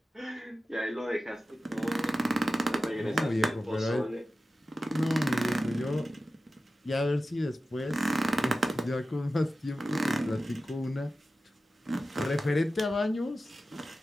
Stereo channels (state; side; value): normal; both; correlation 0.93